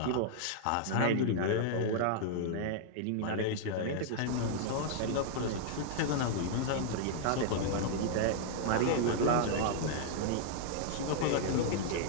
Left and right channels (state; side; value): different; both; correlation -0.01